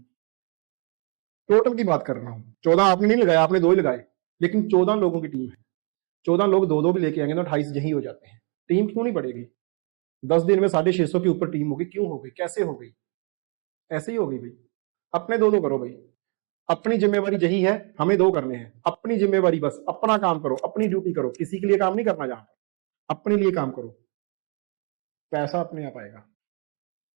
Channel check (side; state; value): left; quieter; 37.5 dB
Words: टोटल की बात कर रहा हूं, 14 आपने नहीं लगाया, आपने 2 ही लगाए, लेकिन 14 लोगों की टीम है। 14 लोग 2-2 भी लेके आएंगे तो 28 यही हो जाते हैं। टीम क्यों नहीं बढ़ेगी? 10 दिन में 650 के ऊपर टीम होगी, क्यों हो गई? कैसे हो गई? ऐसे ही हो गई भाई। अपने 2-2 करो भाई, अपनी जिम्मेवारी यही है, हमें 2 करने हैं, अपनी जिम्मेवारी, बस अपना काम करो, अपनी ड्यूटी करो, किसी के लिए काम नहीं करना, जहां पर अपने लिए काम करो, पैसा अपने आप आएगा।